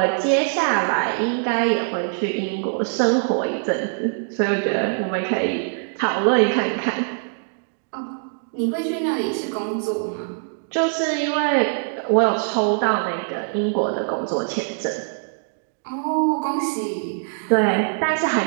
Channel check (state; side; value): silent; left; digital silence